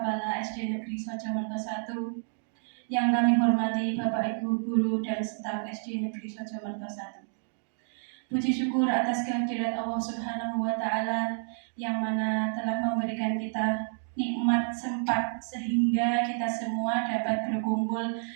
SD Negeri Sojamerto 1, yang kami hormati Bapak Ibu Guru dan staf SD Negeri Sojamerto 1. Puji syukur atas kehadirat Allah Subhanahu wa Ta'ala yang mana telah memberikan kita nikmat sempat sehingga kita semua dapat berkumpul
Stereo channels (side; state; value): left; silent; digital silence